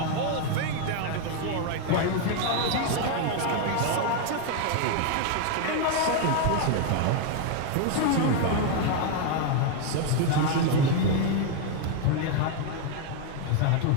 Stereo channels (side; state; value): both; different; correlation 0.01